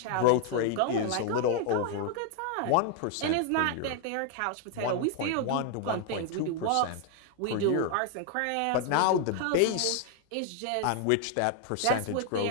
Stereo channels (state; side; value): different; both; correlation 0.00